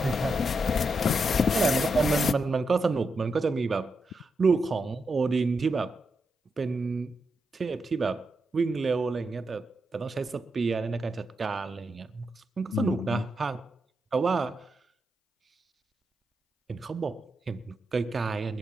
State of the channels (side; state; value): both; normal; correlation 0.85